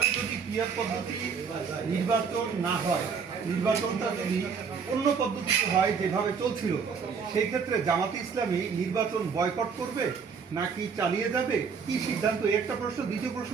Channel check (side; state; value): left; quieter; 6.0 dB